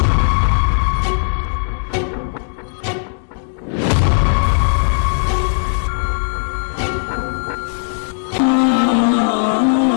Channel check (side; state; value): right; silent; digital silence